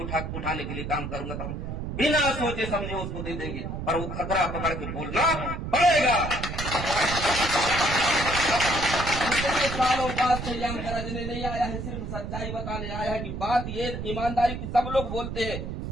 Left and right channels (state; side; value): noise; right; rumble, 5 dB below the sound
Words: उठाने के लिए काम करूंगा। तो हम बिना सोचे समझे उसको दे देंगे, पर वो खतरा पकड़ के बोलना पड़ेगा। आज सयाम गरजने नहीं आया है, सिर्फ सच्चाई बताने आया है कि बात ये ईमानदारी की सब लोग बोलते हैं,